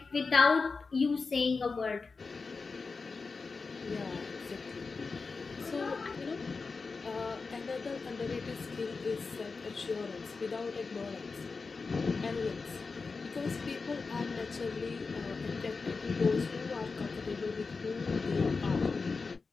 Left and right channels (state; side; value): quieter; right; 4.4 dB